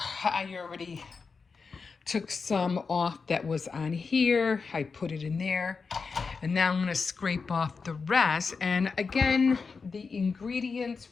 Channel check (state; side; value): quieter; right; 4.9 dB